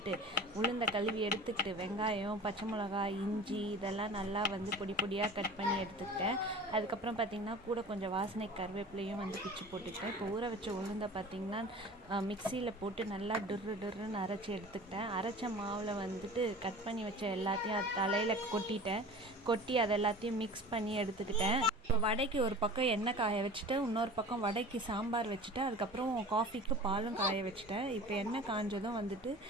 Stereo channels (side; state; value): both; normal; correlation 0.40